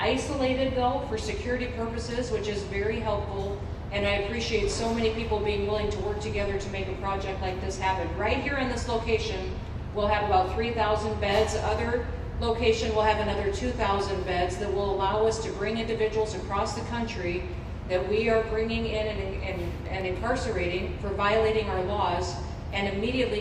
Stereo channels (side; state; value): both; identical; correlation 1.00